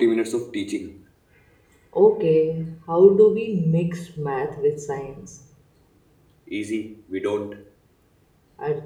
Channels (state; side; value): identical; both; correlation 1.00